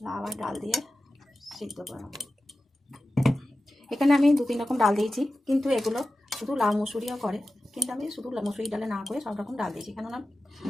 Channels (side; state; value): both; normal; correlation 0.94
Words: লাউ আর ডাল দিয়ে সিদ্ধ করে নেব। এখানে আমি 2-3 রকম ডাল দিয়েছি, কিন্তু এগুলো শুধু লাউ মুসুরিও করে, কিন্তু আমি শুধু মুসুরি ডালে না করে সব রকম ডাল দিয়েছি, কেননা